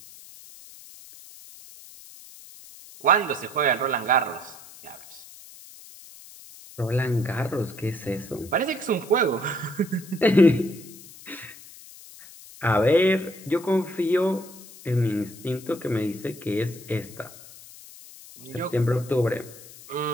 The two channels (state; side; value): noise; left; hiss, 19 dB below the sound